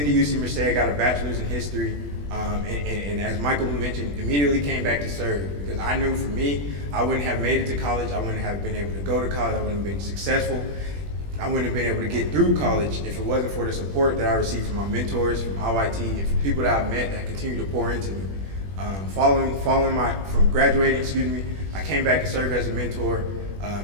UC Merced, got a bachelor's in history, and as Michael mentioned, immediately came back to serve because I knew for me, I wouldn't have made it to college, I wouldn't have been able to go to college, I wouldn't have been successful, I wouldn't have been able to get through college if it wasn't for the support that I received from my mentors, from IYT, and from people that I've met that continue to pour into me. From graduating, I came back to serve as a mentor,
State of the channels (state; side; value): late; left; 21 ms